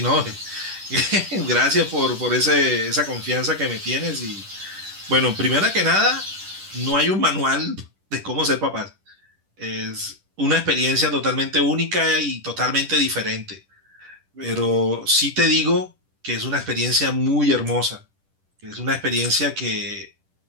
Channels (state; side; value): late; left; 10 ms